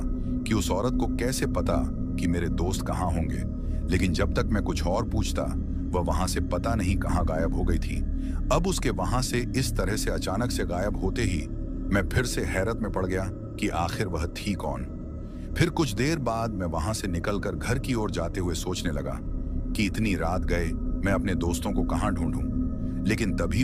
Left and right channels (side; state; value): both; identical; correlation 1.00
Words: कि उस औरत को कैसे पता कि मेरे दोस्त कहां होंगे। लेकिन जब तक मैं कुछ और पूछता, वह वहां से पता नहीं कहां गायब हो गई थी। अब उसके वहां से इस तरह से अचानक से गायब होते ही मैं फिर से हैरत में पड़ गया कि आखिर वह थी कौन। फिर कुछ देर बाद मैं वहां से निकलकर घर की ओर जाते हुए सोचने लगा कि इतनी रात गए मैं अपने दोस्तों को कहां ढूंढूं। लेकिन तभी